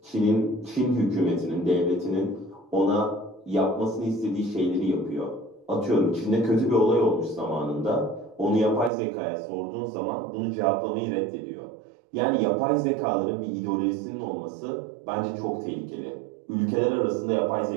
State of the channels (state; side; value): drops out; left; at 8.9 s